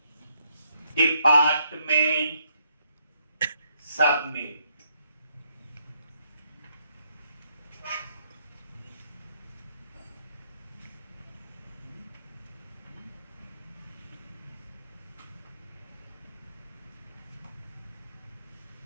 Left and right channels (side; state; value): both; inverted; correlation -0.73